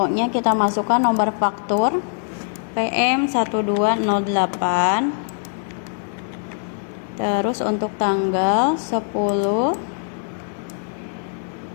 kita masukkan nomor faktur PM 1208. Terus untuk tanggal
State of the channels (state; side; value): silent; right; digital silence